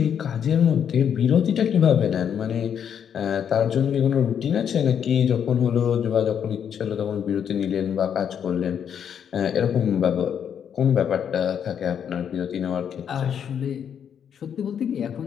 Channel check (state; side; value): quieter; right; 8.3 dB